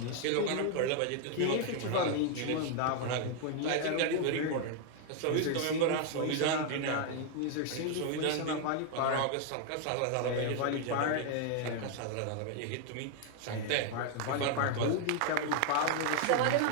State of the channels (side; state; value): both; different; correlation 0.00